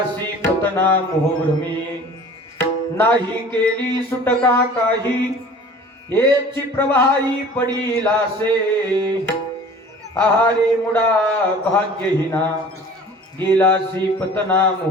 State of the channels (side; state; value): both; normal; correlation 0.45